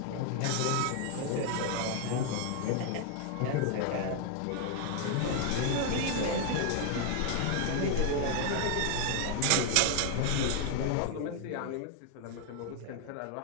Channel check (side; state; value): both; different; correlation 0.00